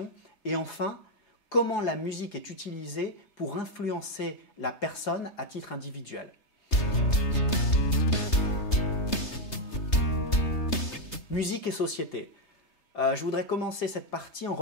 Et enfin, comment la musique est utilisée pour influencer la personne à titre individuel. Musique et société. Je voudrais commencer cette partie en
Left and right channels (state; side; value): late; right; 3.3 ms